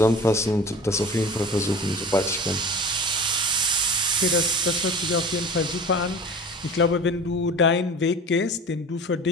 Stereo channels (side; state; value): both; normal; correlation 0.38